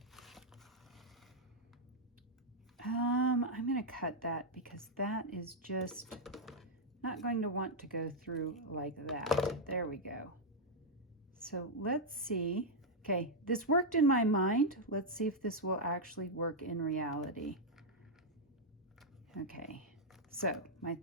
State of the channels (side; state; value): both; normal; correlation -0.03